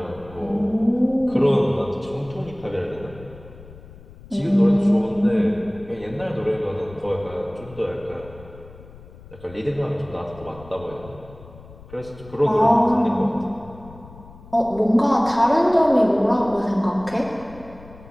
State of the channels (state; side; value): noise; left; rumble, 19 dB below the sound